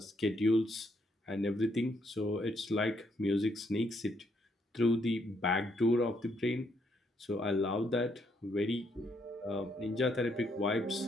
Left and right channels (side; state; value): both; normal; correlation 0.73